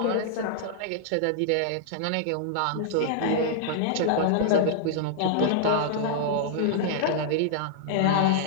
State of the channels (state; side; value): different; both; correlation -0.01